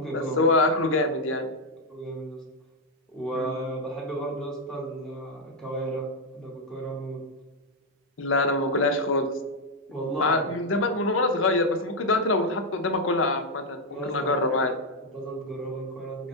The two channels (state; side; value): normal; both; correlation 0.01